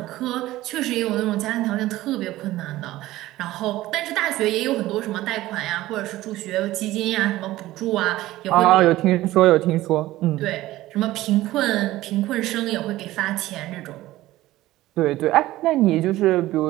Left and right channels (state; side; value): quieter; left; 16.4 dB